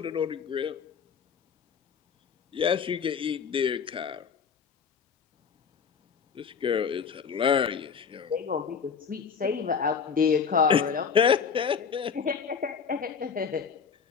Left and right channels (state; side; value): quieter; right; 6.4 dB